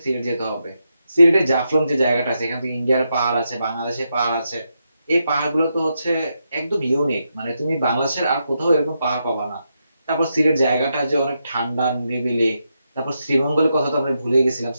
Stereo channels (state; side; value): inverted; both; correlation -0.84